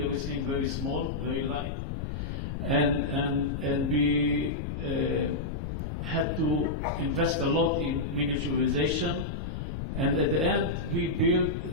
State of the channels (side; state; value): left; noise; rumble, 4 dB below the sound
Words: everything very small, very light, and we had to invest a lot in miniaturization. And at the end, we built